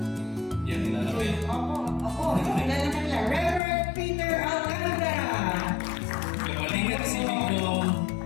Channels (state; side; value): drops out; right; at 3.6 s